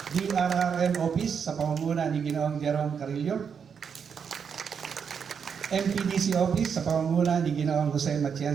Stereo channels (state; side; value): quieter; left; 6.8 dB